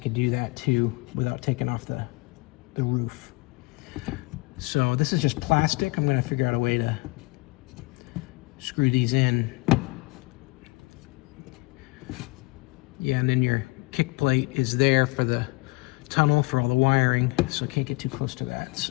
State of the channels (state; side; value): quieter; right; 25.1 dB